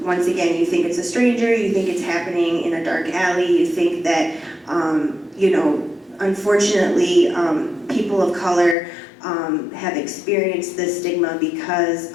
Once again, you think it's a stranger, you think it's happening in a dark alley, you think that, you know, unfortunately, people of color have experienced this stigma because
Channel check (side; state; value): right; drops out; at 8.8 s